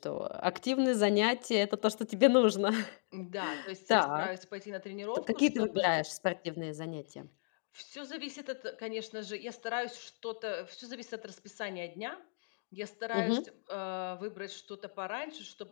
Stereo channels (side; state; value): right; silent; digital silence